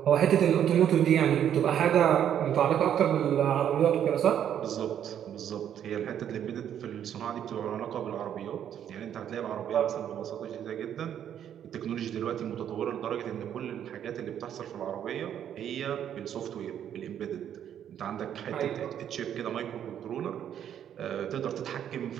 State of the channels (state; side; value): quieter; left; 9.7 dB